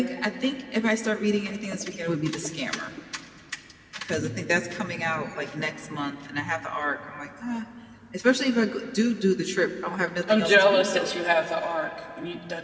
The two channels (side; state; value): both; identical; correlation 1.00